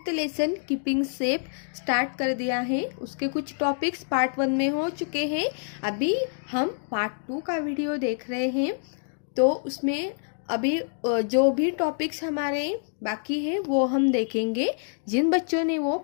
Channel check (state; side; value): silent; right; digital silence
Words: lesson keeping safe start कर दिया है। उसके कुछ टॉपिक्स पार्ट 1 में हो चुके हैं। अभी हम पार्ट 2 का वीडियो देख रहे हैं। तो उसमें अभी जो भी टॉपिक्स हमारे बाकी है वो हम देखेंगे। जिन बच्चों ने वो